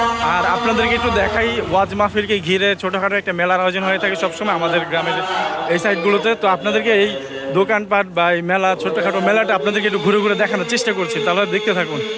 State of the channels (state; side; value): identical; both; correlation 1.00